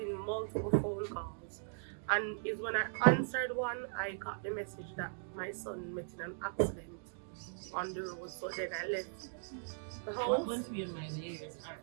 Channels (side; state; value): left; silent; digital silence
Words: multiple phone calls, and it's when I answered one, I got the message that my son met in an accident on the road. So then I left the What house. went through your mind years